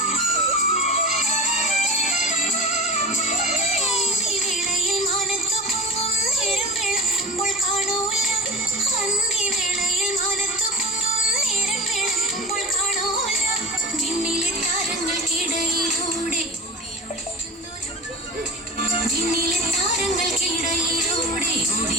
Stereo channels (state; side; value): normal; both; correlation 0.34